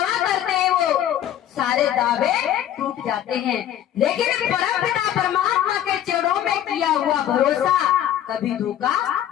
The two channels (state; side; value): quieter; right; 11.3 dB